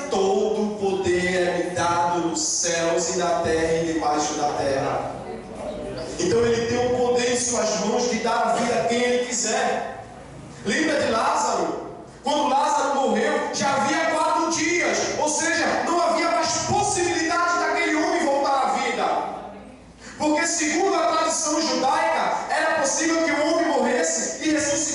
todo o poder é me dado nos céus e na terra e debaixo da terra. Então ele tem o poder em suas mãos de dar a vida a quem ele quiser. Lembra de Lázaro? Quando Lázaro morreu, já havia 4 dias. Ou seja, não havia mais possibilidade daquele homem voltar à vida. Porque segundo a tradição judaica, era possível que o homem morresse e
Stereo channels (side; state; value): both; identical; correlation 1.00